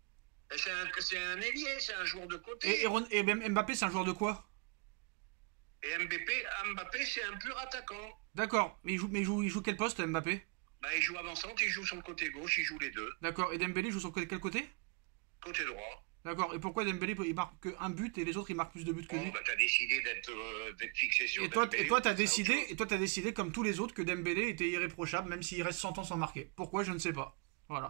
Ben, c'est un ailier, c'est un joueur de côté. Et Mbappé, c'est un joueur de quoi? Et Mbappé, c'est un pur attaquant. D'accord, mais il joue quel poste, Mbappé? Ben, il joue avançante, il joue sur le côté gauche, il joue les deux. D'accord, et Dembélé joue sur quel côté? Côté droit. D'accord, et pourquoi Dembélé il marque qu'un but et les autres ils marquent plus de buts que lui? Oh, ben, t'as décidé d'être fixé sur Et toi, Dembélé, t'as c'est autre chose. décidé, comme tous les autres, que Dembélé était irréprochable, même s'il reste 100 ans sans marquer. Pourquoi, je ne sais pas.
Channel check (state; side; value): quieter; left; 32.7 dB